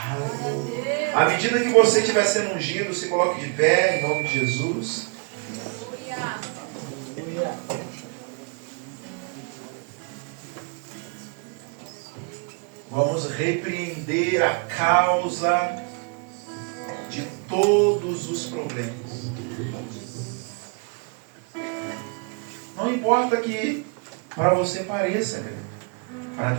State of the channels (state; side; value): quieter; left; 35.0 dB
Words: Aleluia. À medida que você estiver sendo ungido, se coloque de pé, em nome de Jesus. Vamos repreender a causa de todos os problemas. Não importa que para você pareça grande, para